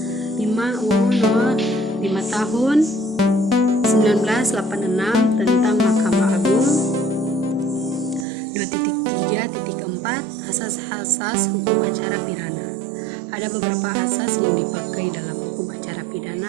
5. UU nomor 5 tahun 1986 tentang Mahkamah Agung. 2.3.4 Asas-asas hukum acara pidana. Ada beberapa asas yang dipakai dalam hukum acara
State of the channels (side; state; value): left; drops out; at 8.2 s